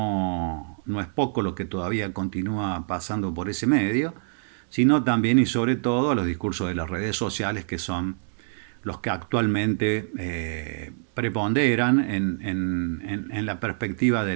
es poco lo que todavía continúa pasando por ese medio, sino también y sobre todo a los discursos de las redes sociales, que son los que actualmente preponderan en la perspectiva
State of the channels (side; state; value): left; silent; digital silence